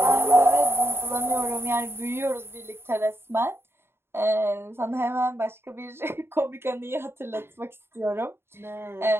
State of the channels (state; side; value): late; left; 0.11 ms